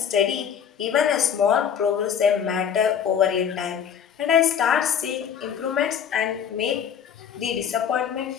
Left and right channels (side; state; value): right; quieter; 8.1 dB